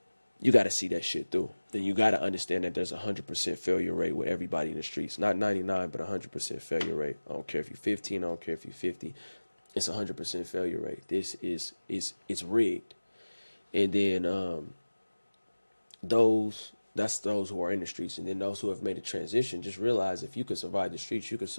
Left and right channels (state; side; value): inverted; both; correlation -1.00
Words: you got to see that shit through. Then you got to understand that there's a 100% failure rate with everybody in the streets. Not 99, but 100% failure rate. I don't care if you're 15. I don't care if you're 50. It's a 100% failure rate. It's rigged. And then that's those who are in the streets. And then those who have made a transition, just realize if you could survive the streets, you could